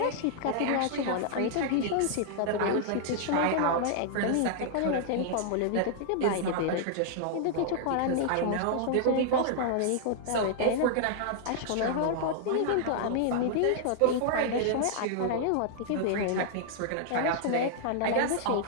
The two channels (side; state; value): both; different; correlation -0.01